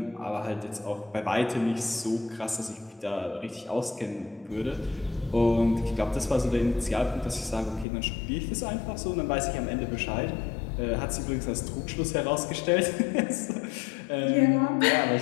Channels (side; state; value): right; drops out; at 7.9 s